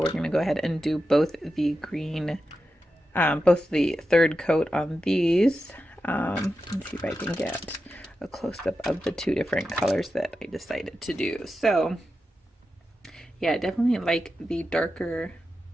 going to go ahead and do both the green, both the third coat on these. Let's see if I can get a close-up of the 2 different colors that I decided to do. So yeah, I definitely like the darker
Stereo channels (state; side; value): normal; both; correlation 0.90